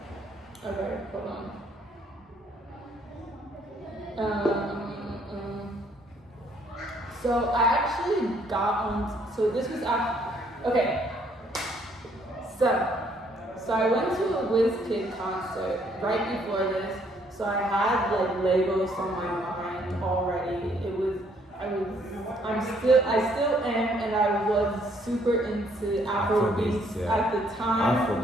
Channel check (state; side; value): normal; both; correlation 0.66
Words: Okay, hold on. So I actually got on. So this was after. Okay. So I went to a WizKid concert right before this. So I had like Legos on my mind already. I still am, and I was super into Afrobeats at the time.